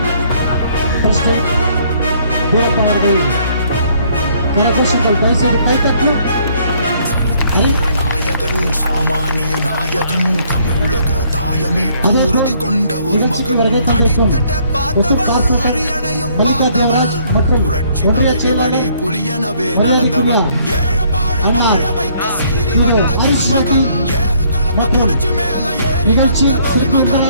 பிரசிடென்ட் வீரப்பாளர்கள் கரகோஷங்கள் தயவுசெய்து கைத்தட்டலும். சாமானிய நாயகன் தமிழக தாயமீட்க உறுதி கொண்ட ஒரு மகன் அரியணையும் புரட்சி தலைவி வழி புலியனவே நடந்தவர் நிகழ்ச்சி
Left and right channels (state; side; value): inverted; both; correlation -0.65